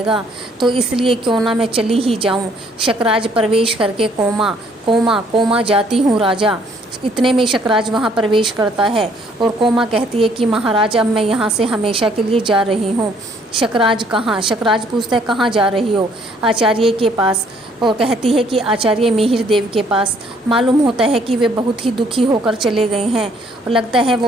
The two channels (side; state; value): both; normal; correlation 0.64